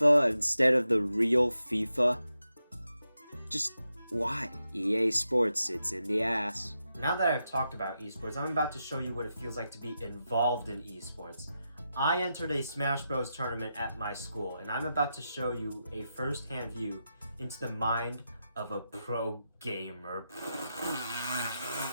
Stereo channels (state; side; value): inverted; both; correlation -0.87